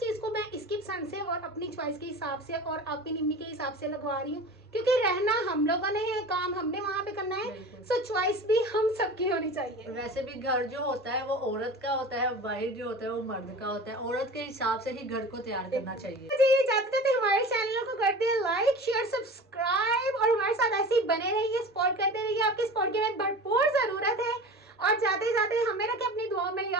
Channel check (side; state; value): both; normal; correlation 0.35